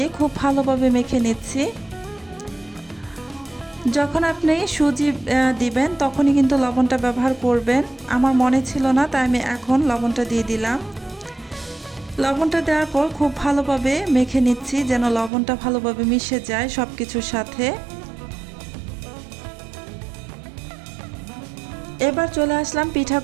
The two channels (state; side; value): drops out; left; at 15.3 s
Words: খুব ভালোভাবে মেখে নিচ্ছি। যখন আপনি সুজি দিবেন তখনই কিন্তু লবণটা ব্যবহার করবেন। আমার মনে ছিল না, তাই আমি এখন লবণটা দিয়ে দিলাম। লবণটা দেওয়ার পর খুব ভালোভাবে মেখে নিচ্ছি, যেন লবণটা ভালোভাবে মিশে যায় সব কিছুর সাথে। এবার চলে আসলাম